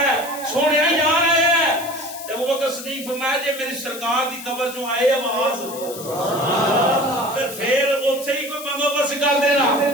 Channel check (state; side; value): noise; left; hiss, 13 dB below the sound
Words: سونے یار آیا جب وہ بکر صدیق فرمایا جی میری سرکار دی قبر جو آئے آواز پھر اتھے ہی کوئی بندوبست کر دینا